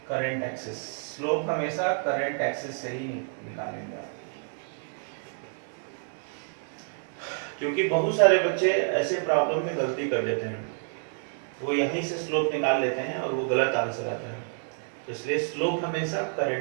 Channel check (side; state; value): left; silent; 59 dB below the other